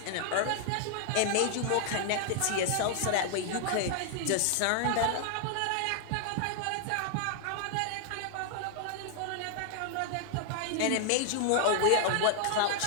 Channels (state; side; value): different; both; correlation 0.00